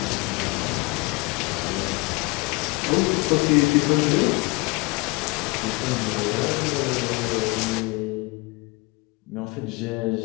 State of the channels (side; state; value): right; quieter; 26.9 dB